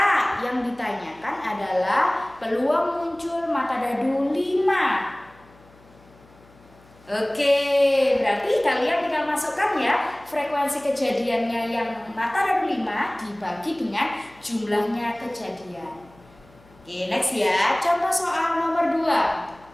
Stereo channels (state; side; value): noise; left; hum, 27 dB below the sound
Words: yang ditanyakan adalah peluang muncul mata dadu 5. Oke, berarti kalian tinggal masukkan ya frekuensi kejadiannya yang mata dadu 5 dibagi dengan jumlahnya kejadian. Oke, next ya. Contoh soal nomor 2.